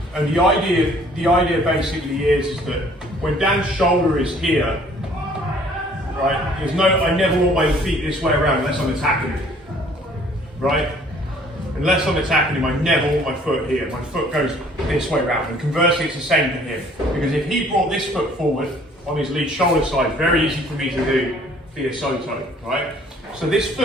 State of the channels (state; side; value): normal; both; correlation 0.57